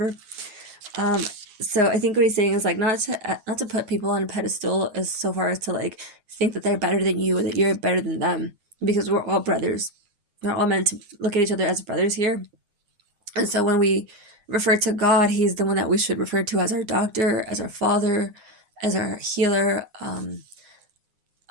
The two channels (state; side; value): late; left; 9.6 ms